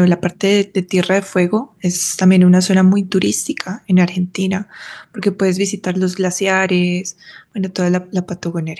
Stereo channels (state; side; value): identical; both; correlation 1.00